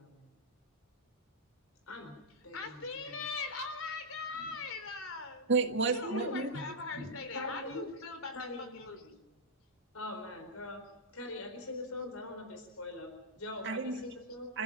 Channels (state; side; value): normal; both; correlation -0.09